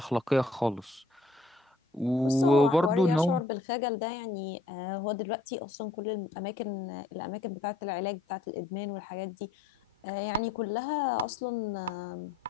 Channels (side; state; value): right; quieter; 3.1 dB